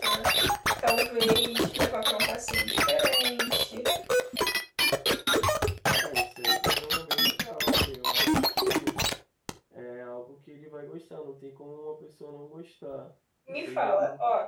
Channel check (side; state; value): both; identical; correlation 1.00